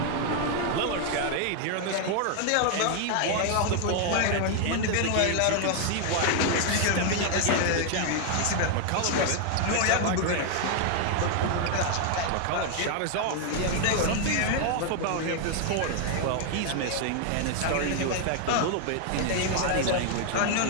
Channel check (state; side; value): different; both; correlation 0.00